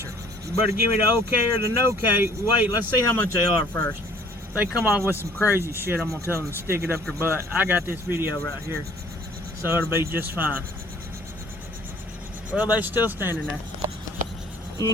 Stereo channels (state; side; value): normal; both; correlation 0.55